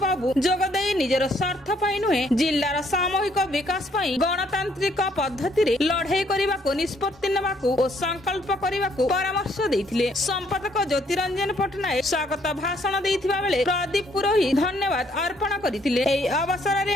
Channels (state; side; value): normal; both; correlation 0.67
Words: जोगदेई निजर स्वार्थ पाई नुहे जिल्लार सामूहिक विकास पाई गणतांत्रिक पद्धति रे लड़ाई करबाको निष्पत्ति नेबाको और संकल्प करबाको परामर्श देथिले। संपादक ज्योतिरंजन पटनायक स्वागत भाषण देथिबा बेले प्रदीप पुरोहित धन्यवाद अर्पण करथिले। एई अवसर रे